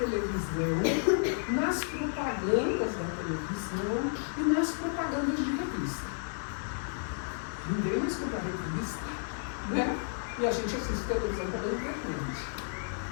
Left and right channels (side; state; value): right; silent; digital silence